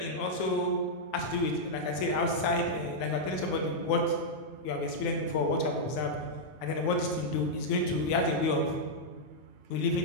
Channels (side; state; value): right; late; 9.4 ms